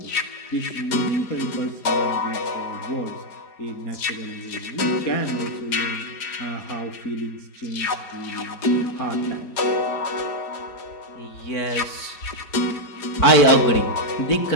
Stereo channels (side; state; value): right; late; 4.5 ms